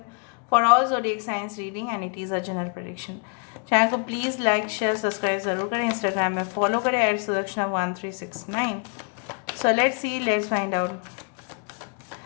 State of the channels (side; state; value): right; quieter; 38.9 dB